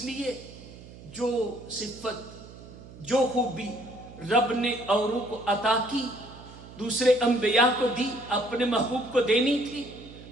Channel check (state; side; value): noise; right; hum, 17 dB below the sound